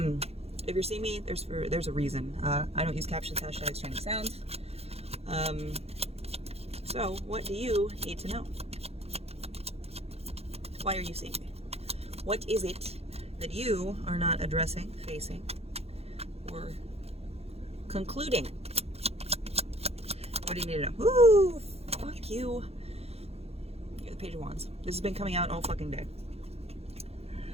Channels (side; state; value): left; late; 0.29 ms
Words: If you're seeing me, there's a reason. I don't use captions, hashtags, trending sounds. So what do you need to know? Why are you seeing me? What is it that you are not addressing, facing, or concluding? What do you need to know? Ooh, fuck you. You're the Page of Wands. This has been coming out all fucking day.